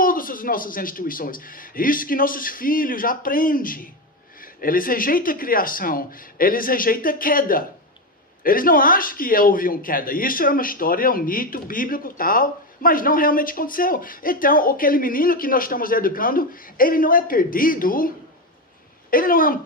as nossas instituições. Isso que nossos filhos aprendem. Eles rejeitam a criação, eles rejeitam a queda. Eles não acham que houve uma queda. Isso é uma história, um mito bíblico tal, mas não realmente aconteceu. Então, aquele menino que nós estamos educando, ele não é perdido, ele não é um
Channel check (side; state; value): both; normal; correlation 0.13